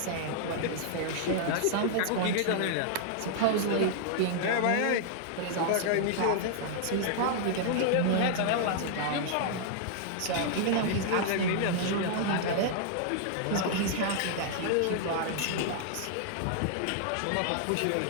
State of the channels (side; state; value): both; different; correlation -0.01